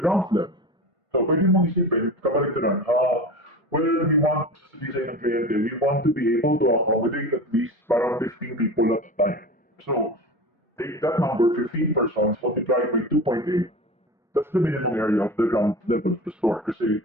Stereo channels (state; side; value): normal; both; correlation 0.30